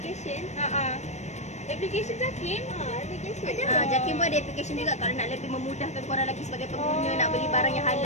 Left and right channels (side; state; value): right; late; 0.33 ms